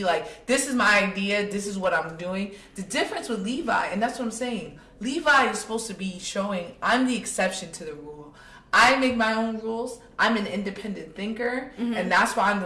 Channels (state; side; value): identical; both; correlation 1.00